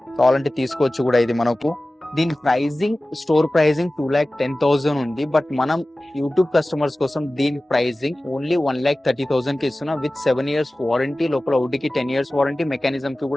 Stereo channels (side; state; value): both; normal; correlation 0.97